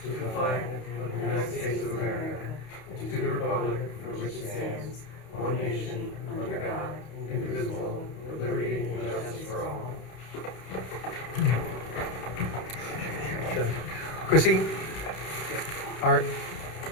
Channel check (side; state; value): right; late; 31 ms